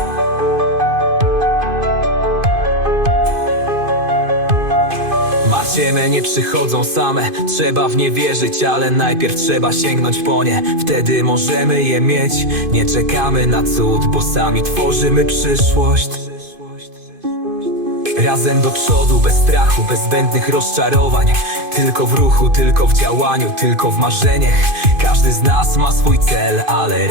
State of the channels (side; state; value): left; late; 2.5 ms